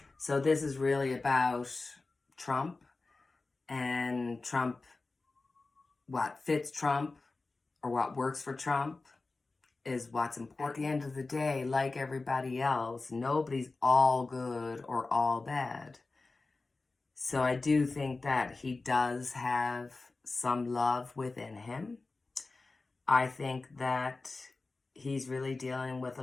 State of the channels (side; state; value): right; quieter; 3.6 dB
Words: So this is really about Trump. And Trump, what fits Trump or what works for Trump is what's important. At the end of the day, like everybody else, nobody's all good or all bad. So I do think that he does have some love within him. I think that he's really dealing with a